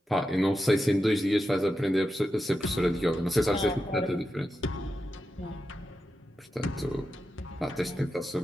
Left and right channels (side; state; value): both; normal; correlation 0.89